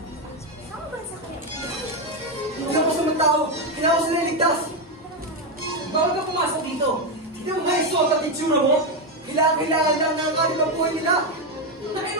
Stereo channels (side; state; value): both; normal; correlation 0.07